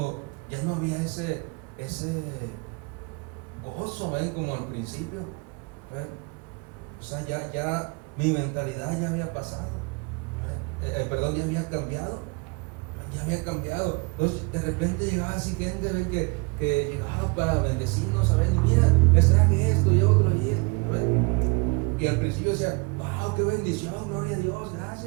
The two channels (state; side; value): quieter; left; 30.4 dB